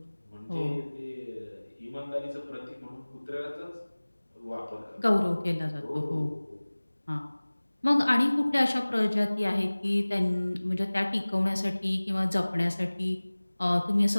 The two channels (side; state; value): both; inverted; correlation -1.00